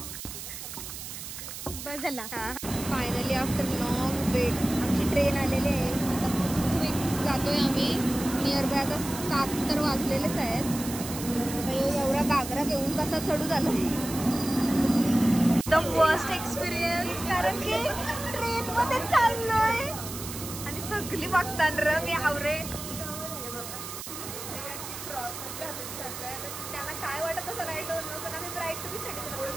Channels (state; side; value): noise; right; hiss, 9 dB below the sound